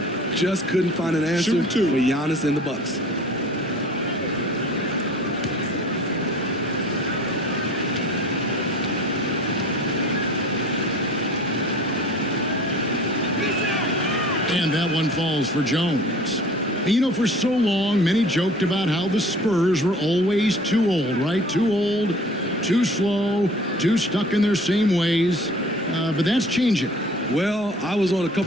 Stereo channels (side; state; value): both; normal; correlation 0.46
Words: Just couldn't find an answer for Giannis and the Bucks. And that one falls for Jones. And you know, for so long, many joked about how the Spurs were always too old, right? Too old, too slow, too stuck in their same ways. But that's changing. Well, I was on a